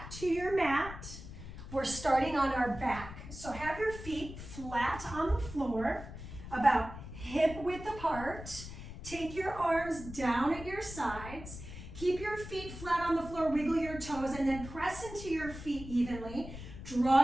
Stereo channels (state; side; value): noise; left; rumble, 11 dB below the sound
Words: to your mat. We're starting on our back. So have your feet flat on the floor, about hip width apart. Take your arms down at your sides. Keep your feet flat on the floor, wiggle your toes, and then press into your feet evenly.